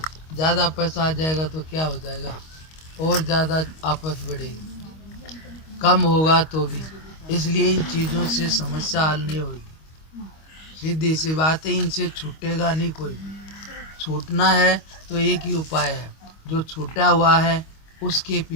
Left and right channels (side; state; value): right; late; 25 ms